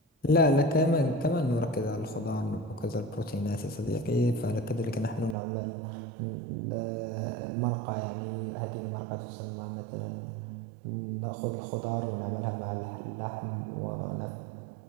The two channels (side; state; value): left; drops out; at 5.4 s